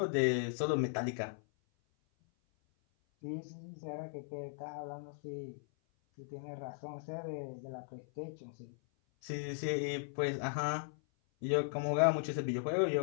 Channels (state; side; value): silent; right; 53 dB below the other